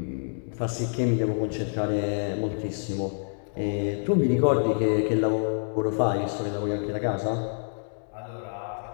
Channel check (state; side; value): silent; right; digital silence